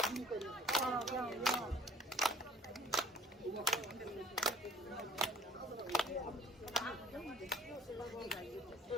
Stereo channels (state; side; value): normal; both; correlation 0.53